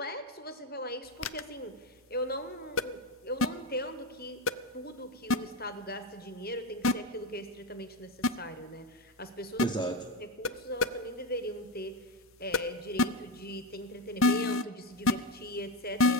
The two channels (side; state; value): both; normal; correlation 0.17